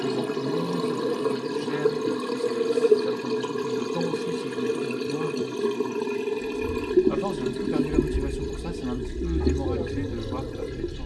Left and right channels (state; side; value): identical; both; correlation 1.00